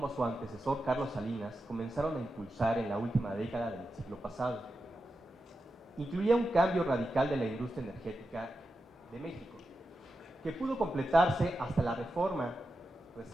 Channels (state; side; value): normal; both; correlation 0.90